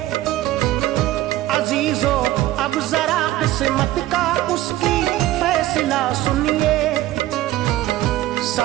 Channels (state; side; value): quieter; left; 15.4 dB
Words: अजीजों अब जरा किस्मत का उसकी फैसला सुनिए।